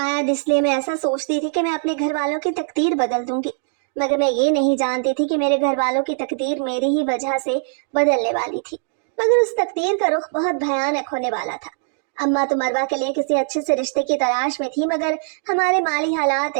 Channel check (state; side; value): silent; left; digital silence